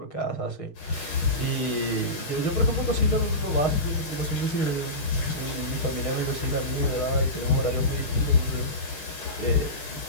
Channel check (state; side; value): late; right; 6.4 ms